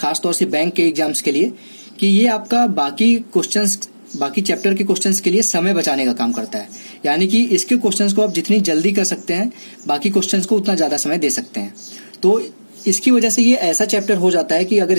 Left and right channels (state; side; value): inverted; both; correlation -1.00